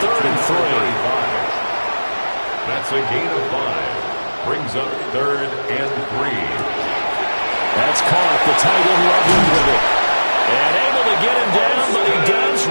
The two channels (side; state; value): both; inverted; correlation -1.00